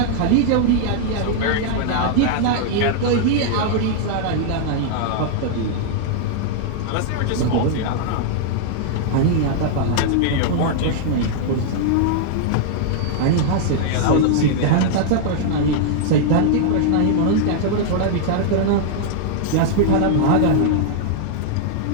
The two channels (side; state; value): both; different; correlation -0.01